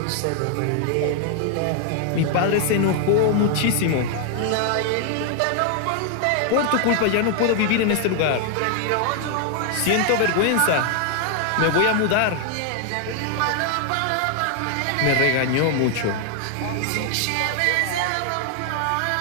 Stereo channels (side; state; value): both; different; correlation 0.00